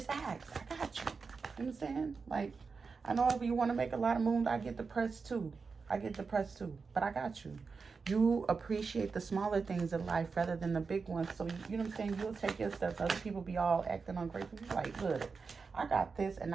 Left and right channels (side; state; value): left; quieter; 4.9 dB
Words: ask. I got you. You know what I'm saying? Like, I know if you want to make a lot of moves, I get depressed too. But I got you. You appreciate the smaller things in life rather than the big ones. So, you know what I'm saying? You'll take your steps. Other people be all acting ungrateful. You're like, look, I got this, and